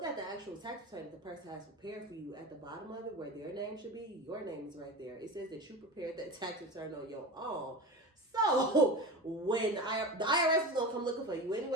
at the actual tax return that the person has prepared for you, at the bottom of it where their name should be, your name is right there. It says that you prepared that tax return on your own. So when the IRS is gonna come looking for you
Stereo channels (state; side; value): normal; both; correlation 0.28